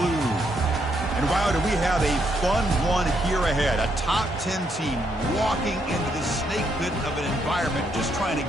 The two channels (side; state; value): both; normal; correlation 0.75